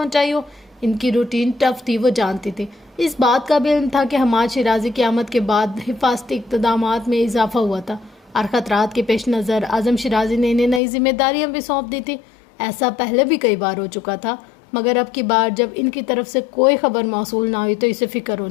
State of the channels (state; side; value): drops out; right; at 10.8 s